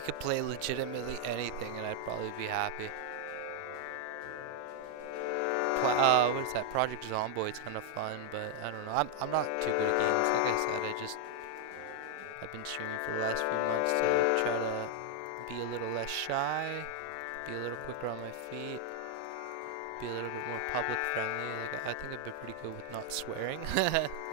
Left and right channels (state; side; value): different; both; correlation 0.00